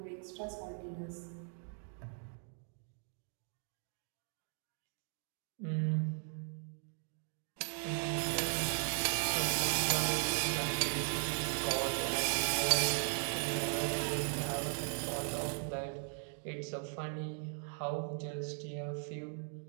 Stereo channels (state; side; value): silent; left; 52 dB below the other